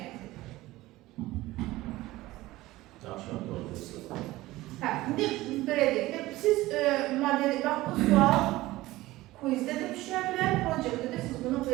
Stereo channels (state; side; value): quieter; left; 17.9 dB